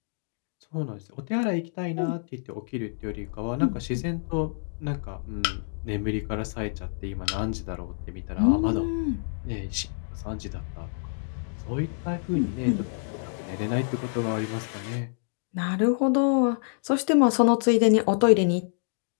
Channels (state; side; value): silent; right; digital silence